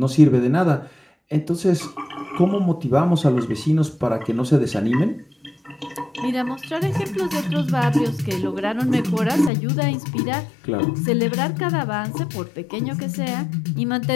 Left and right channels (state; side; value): drops out; right; at 9.5 s